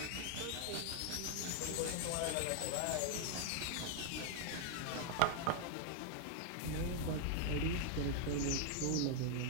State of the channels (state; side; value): different; both; correlation 0.00